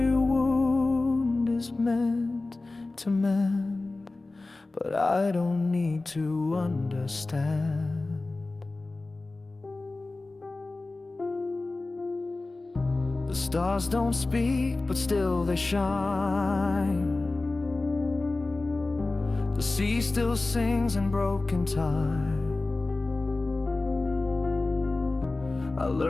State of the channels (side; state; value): right; quieter; 3.2 dB